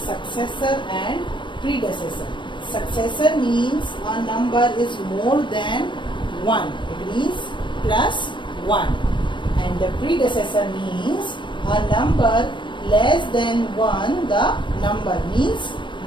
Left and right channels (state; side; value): late; right; 0.23 ms